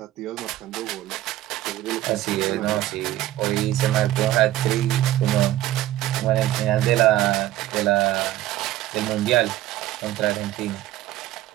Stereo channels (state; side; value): quieter; left; 14.4 dB